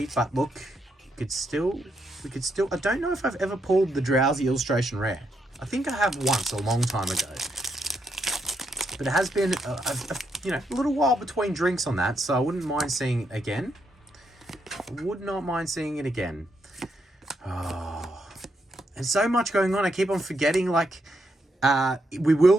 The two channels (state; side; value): normal; both; correlation 0.79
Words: But look, we could still. I don't know if I've ever pulled the Drowsy illustration rare. I think I have once a long time ago. But it has been, a little while between drinks on that, so I wouldn't mind seeing it again. Would not mind seeing it again. Oh, and so much going on. I keep on forgetting, like, we will